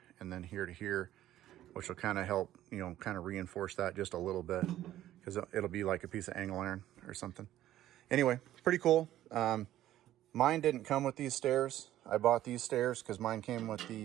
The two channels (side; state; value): left; quieter; 13.3 dB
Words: and then here to here, which will kind of help, kind of reinforce that just a little bit, because it'll be like a piece of angle iron or something. Anyway, pretty cool. Mine didn't come with these stairs. I bought these stairs because mine came with